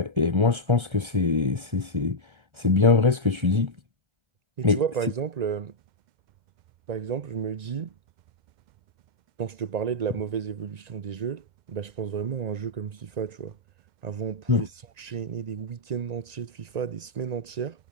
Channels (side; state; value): left; late; 1.3 ms